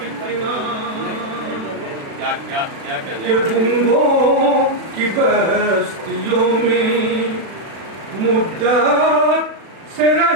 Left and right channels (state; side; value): late; left; 36 ms